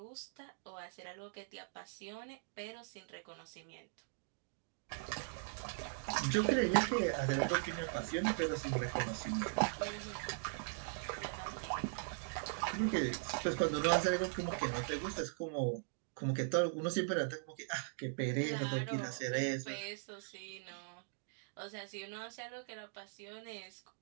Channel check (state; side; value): silent; left; digital silence